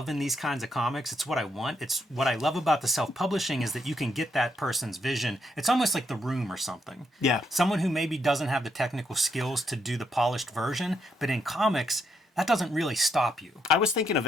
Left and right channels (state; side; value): normal; both; correlation 0.77